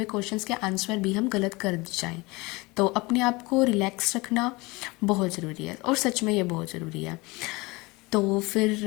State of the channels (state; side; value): quieter; right; 24.0 dB